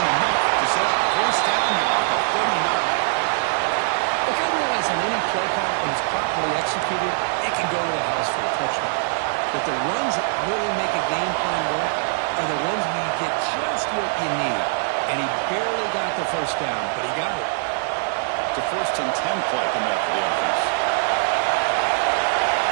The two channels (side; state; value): left; silent; digital silence